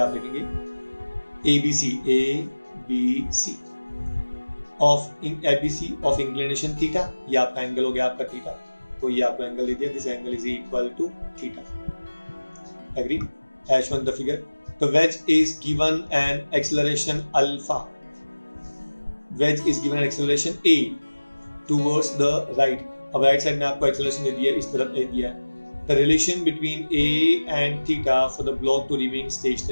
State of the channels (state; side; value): inverted; both; correlation -1.00